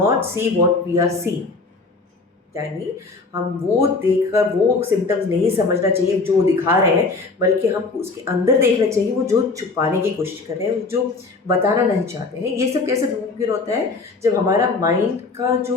see what we are seeing, यानी हम वो देखकर वो सिम्टम्स नहीं समझना चाहिए जो दिखा रहे हैं, बल्कि हमको उसके अंदर देखना चाहिए वो जो छुपाने की कोशिश कर रहे हैं, जो बताना नहीं चाहते हैं। ये सब कैसे मुमकिन होता है, जब हमारा माइंड का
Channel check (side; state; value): right; quieter; 3.9 dB